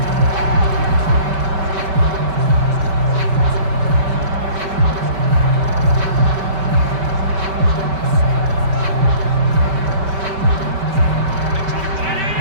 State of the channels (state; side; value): late; left; 5.2 ms